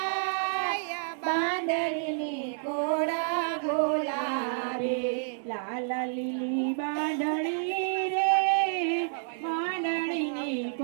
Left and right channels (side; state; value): left; silent; 58 dB below the other